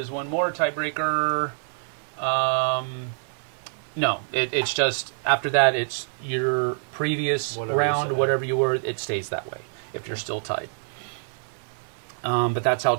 one more tiebreaker. No, it's just, after that, it's your previous round, whatever you were, it stays that way if you're still tied. But that's how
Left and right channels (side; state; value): left; silent; digital silence